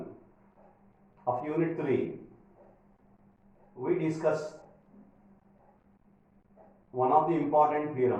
of Unit 3, we discuss one of the important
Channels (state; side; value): identical; both; correlation 1.00